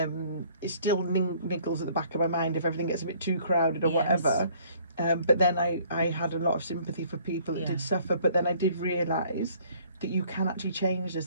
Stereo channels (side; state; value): both; inverted; correlation -0.59